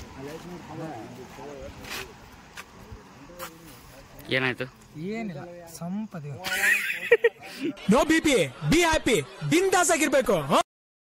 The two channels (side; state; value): both; identical; correlation 1.00